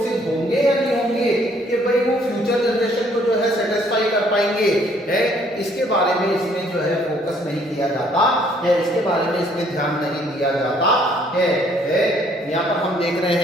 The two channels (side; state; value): both; normal; correlation 0.63